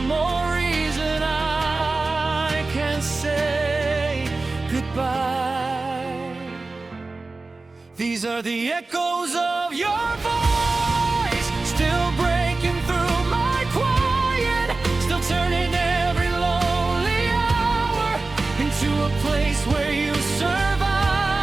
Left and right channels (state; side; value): quieter; left; 3.5 dB